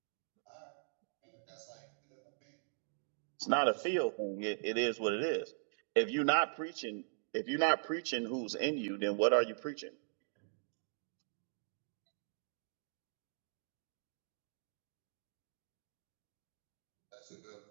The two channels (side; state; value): left; silent; digital silence